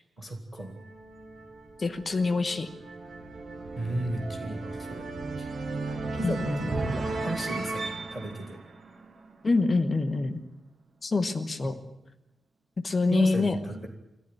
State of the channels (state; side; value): normal; both; correlation 0.92